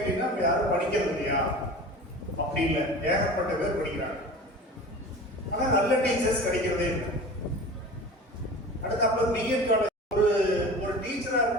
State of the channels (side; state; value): both; normal; correlation 0.36